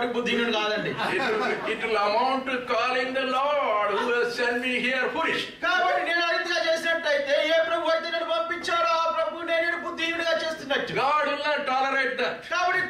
బుద్ధిహీనుడు కాదండి. It will amount to calling the Lord who has sent me here foolish. కాబట్టి నేను అరితిగా చేసినట్టయితే ఏ ప్రభు అయితే నన్ను పంపించాడో ఆ ప్రభు నేను బుద్ధిహీనుడిగా చేస్తున్నట్టు. God will not tolerate that. కాబట్టి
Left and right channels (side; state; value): both; identical; correlation 1.00